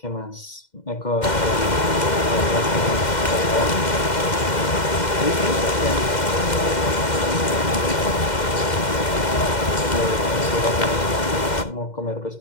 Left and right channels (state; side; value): late; right; 2.1 ms